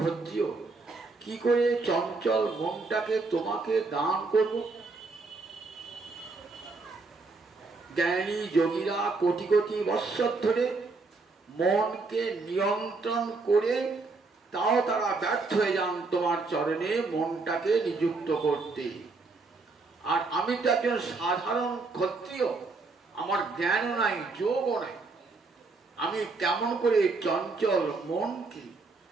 ক্ষত্রিয়, কি করে চঞ্চল মনটাকে তোমাকে দান করব? জ্ঞানী যোগীরা কোটি কোটি বৎসর ধরে মনকে নিয়ন্ত্রণ করে, তাও তারা ব্যর্থ হয়ে যান তোমার চরণে মনটাকে নিযুক্ত করতে। আর আমি তো একজন সাধারণ ক্ষত্রিয়, আমার জ্ঞানও নাই, যোগও নাই, আমি কেমন করে চঞ্চল মনকে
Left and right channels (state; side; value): quieter; left; 3.9 dB